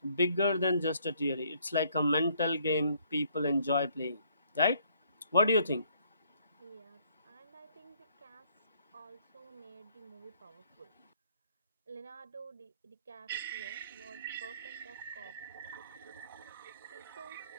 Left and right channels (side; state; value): both; inverted; correlation -0.65